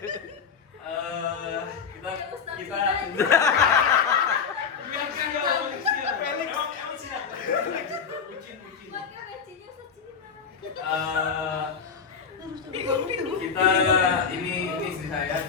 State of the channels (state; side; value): quieter; right; 6.2 dB